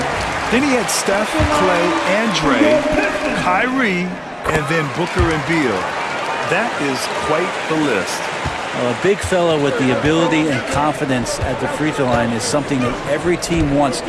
Then he had Steph, Clay, and Dre, Kyrie, and then Booker and Beal. That is quite the list. A big fella with the ability and confidence at the free throw line is something that every team wants.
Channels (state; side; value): identical; both; correlation 1.00